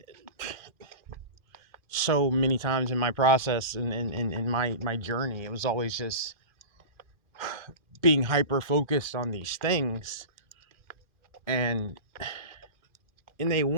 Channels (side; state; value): left; late; 2.4 ms